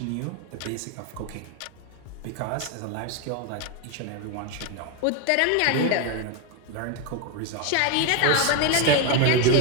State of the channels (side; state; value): both; different; correlation 0.01